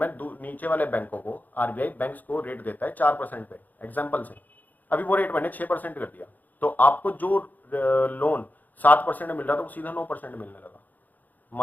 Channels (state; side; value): late; right; 0.083 ms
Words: नीचे वाले बैंकों को, आरबीआई बैंक्स को रेट देता है 4% पे, एग्जाम्पल से, अभी वो रेट मैंने 6% कर दिया, तो आपको जो लोन 7% मिल रहा था वो सीधा 9% मिलने लगा।